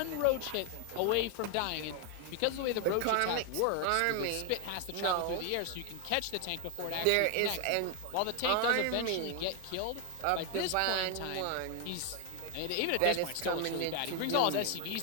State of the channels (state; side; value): different; both; correlation 0.01